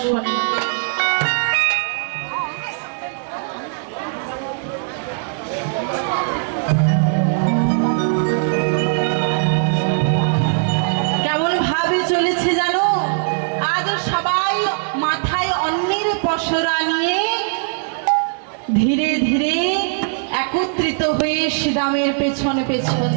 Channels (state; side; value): silent; left; digital silence